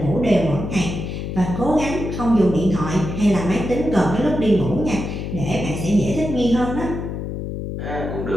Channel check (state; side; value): noise; left; hum, 5 dB below the sound